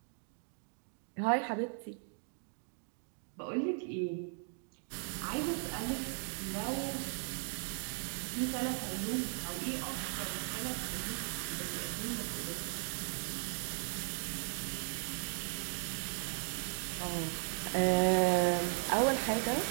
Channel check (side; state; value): left; silent; 53 dB below the other